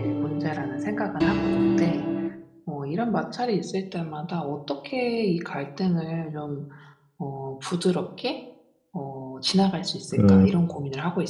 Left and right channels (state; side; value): identical; both; correlation 1.00